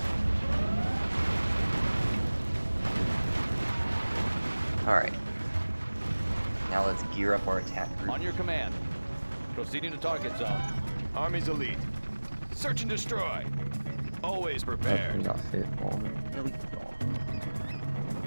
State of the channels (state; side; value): inverted; both; correlation -1.00